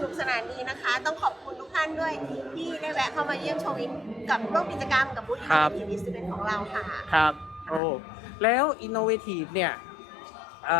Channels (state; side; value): drops out; right; at 7.8 s